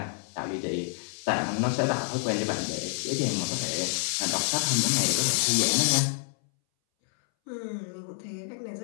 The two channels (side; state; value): right; silent; 59 dB below the other